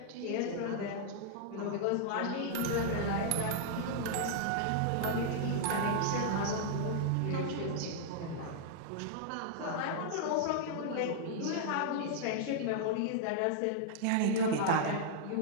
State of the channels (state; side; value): different; both; correlation -0.01